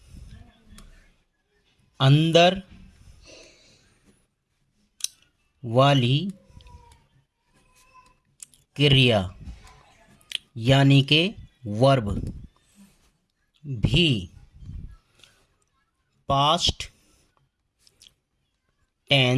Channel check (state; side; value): identical; both; correlation 1.00